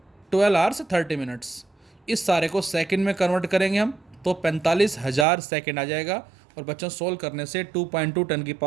12 आवर्स 30 मिनट्स। इस सारे को सेकंड में कन्वर्ट करेंगे हम तो 45,000 सेकंड आ जाएगा। और बच्चों सोल्व करने से 2.2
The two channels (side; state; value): left; drops out; at 5.2 s